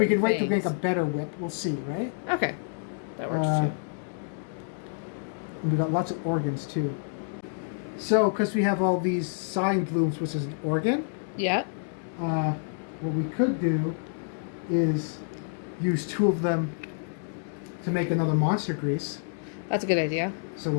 could wait to things. make a better whip. We'll see, right? Okay, that works too. And we got lots of organs too. So, because we have all these sign blooms, which is an organ, Yeah. what we could do is use 2 of them to make another monster grease. That's a good idea. So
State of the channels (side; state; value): right; silent; digital silence